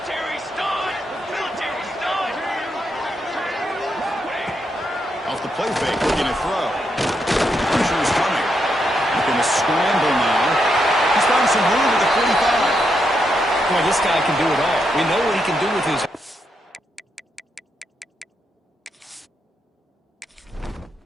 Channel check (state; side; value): normal; both; correlation 0.81